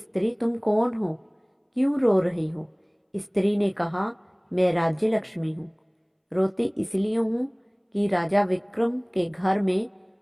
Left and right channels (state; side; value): identical; both; correlation 1.00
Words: तुम कौन हो? क्यों रो रही हो? स्त्री ने कहा, मैं राज्य लक्ष्मी हूँ। रोती इसलिए हूँ कि राजा विक्रम के घर में